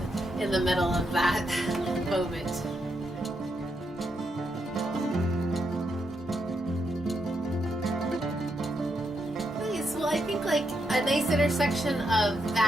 in the middle of that moment. Well, I think like a nice intersection of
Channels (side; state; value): both; normal; correlation 0.81